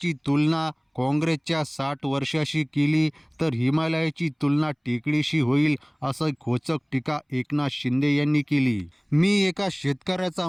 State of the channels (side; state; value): both; identical; correlation 1.00